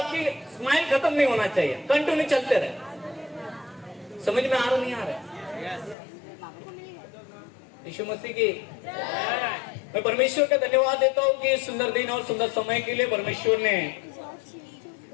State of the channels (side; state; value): right; drops out; at 6.0 s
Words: स्माइल खत्म नहीं होना चाहिए, कंटिन्यू चलते रहे। समझ में आ रहा नहीं आ रहा? यीशु मसीह की मैं परमेश्वर का धन्यवाद देता हूँ कि सुंदर दिन और सुंदर समय के लिए परमेश्वर ने